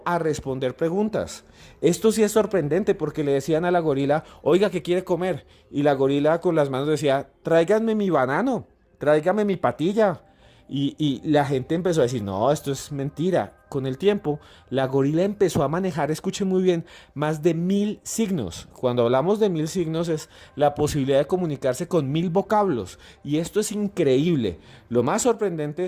a responder preguntas. Esto sí es sorprendente, porque le decían a la gorila: oiga, ¿qué quiere comer? Y la gorila con las manos decía: tráiganme mi banano, tráigame mi patilla. Y la gente empezó a decir: no, esto es mentira. Con el tiempo, la gorila empezó a manejar, escuchen muy bien, más de 1000 signos. Cuando hablamos de 1000 signos es la posibilidad de comunicarse con 1000 vocablos. Y esto es increíble. Lo más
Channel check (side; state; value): both; identical; correlation 1.00